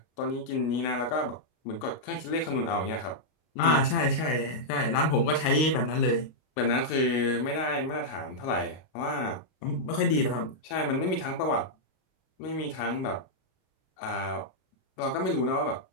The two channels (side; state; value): right; late; 32 ms